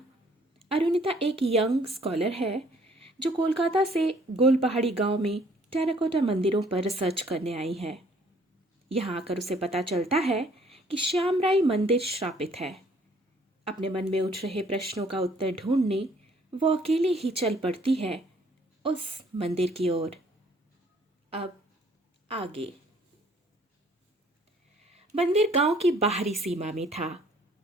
अरुणिता एक यंग स्कॉलर है जो कोलकाता से गोलपहाड़ी गांव में टेराकोटा मंदिरों पर रिसर्च करने आई है। यहाँ आकर उसे पता चलता है कि श्यामराई मंदिर श्रापित है। अपने मन में उठ रहे प्रश्नों का उत्तर ढूंढने वो अकेले ही चल पड़ती है उस मंदिर की ओर। अब आगे। मंदिर गांव की बाहरी सीमा में था।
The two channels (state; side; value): normal; both; correlation 0.60